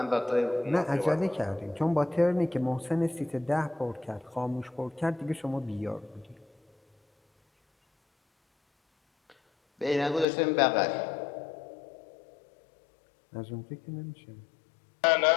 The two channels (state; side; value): drops out; right; at 10.2 s